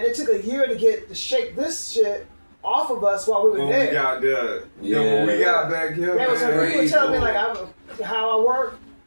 It took a year to shake this shit off of us while we were When there. we got there. Yeah. When we got back here, They was man. people were telling me like how I work.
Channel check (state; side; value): inverted; both; correlation -1.00